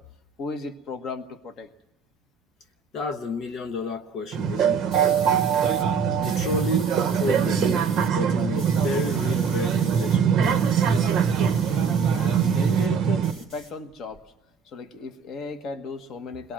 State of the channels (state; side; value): quieter; left; 5.7 dB